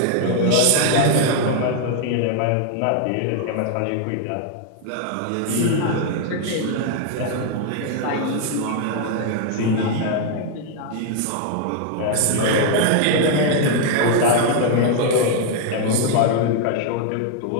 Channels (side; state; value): both; different; correlation 0.00